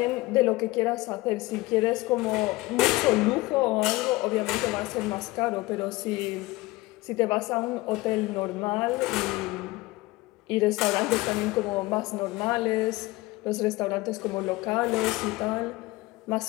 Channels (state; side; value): quieter; right; 20.4 dB